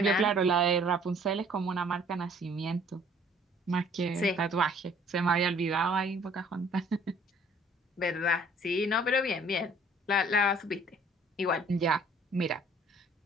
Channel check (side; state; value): both; normal; correlation 0.56